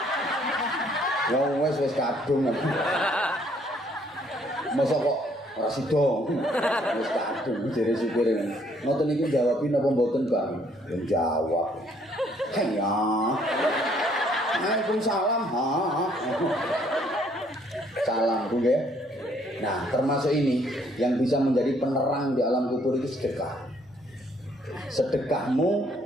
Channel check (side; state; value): both; normal; correlation 0.65